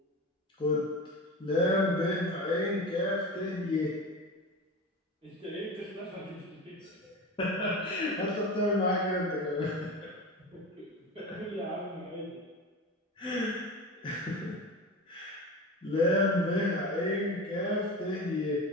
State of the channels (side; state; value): both; normal; correlation 0.29